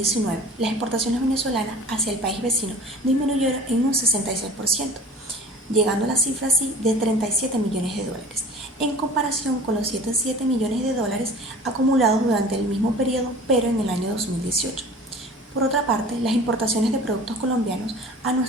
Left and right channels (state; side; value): normal; both; correlation 0.43